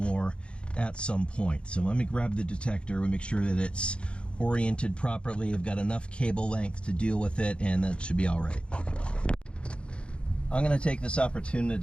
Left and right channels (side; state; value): right; late; 0.057 ms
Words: at some point. So let me grab the detector and make sure that it's oriented properly. I've got enough cable length to deal with it, and that should be all right. I'm going to take this